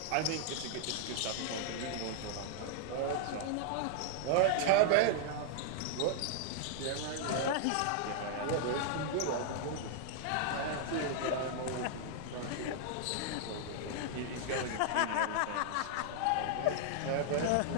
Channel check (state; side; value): different; both; correlation -0.01